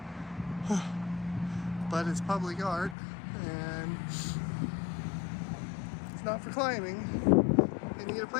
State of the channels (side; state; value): right; drops out; at 3.0 s